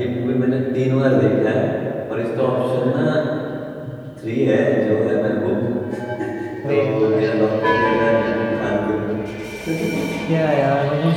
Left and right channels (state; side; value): identical; both; correlation 1.00